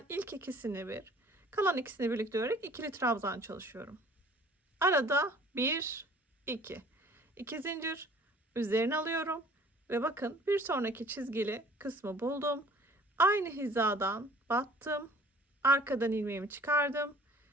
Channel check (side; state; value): both; normal; correlation 0.52